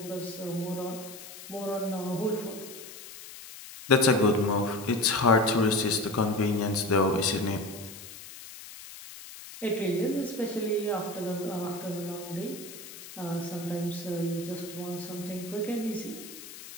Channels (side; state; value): left; noise; hiss, 14 dB below the sound